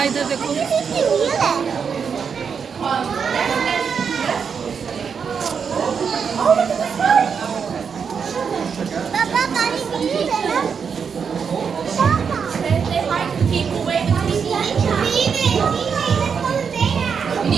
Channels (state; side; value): quieter; left; 6.4 dB